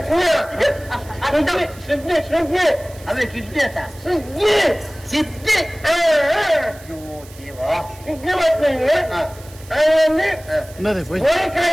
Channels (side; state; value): right; noise; hiss, 22 dB below the sound